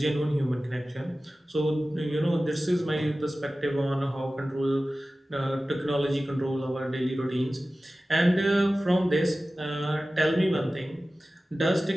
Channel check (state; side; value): normal; both; correlation 0.96